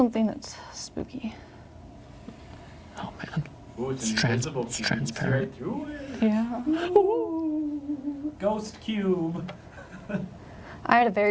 that's spooky? Oh man. Ooh, it's, It's invisible. it's cube. You can see transparent. right through it. Yeah. Ghost cube. I had a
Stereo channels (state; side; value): identical; both; correlation 1.00